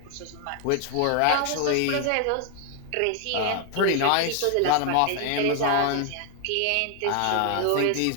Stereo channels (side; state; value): both; different; correlation 0.00